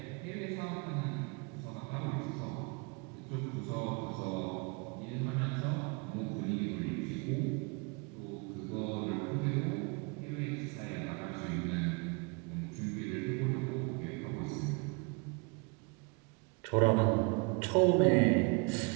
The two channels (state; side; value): quieter; left; 31.2 dB